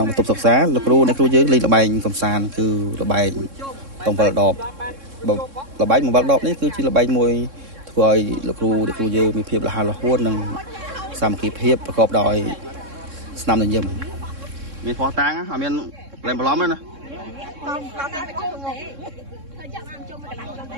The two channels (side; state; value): left; late; 3.6 ms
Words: ុងបន្ទប់សិក្សាលោកគ្រូអ្នកគ្រូយើងលេងល្បែងកំសាន្តគឺល្បែងតងវល់ដបល្បែងវល់ដបនេះគឺជាល្បែងមួយធ្វើឲ្យលោកគ្រូអ្នកគ្រូយើងមានភាពរហ័សរហួននិងសាមគ្គីភាពប្រកបដោយស្នាមញញឹមមានផោះតាំងអត់មានលែងបន្លំទេណា